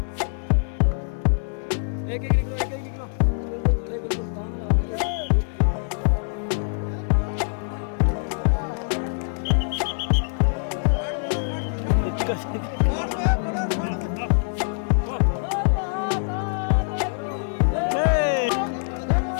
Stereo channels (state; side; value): silent; right; 63 dB below the other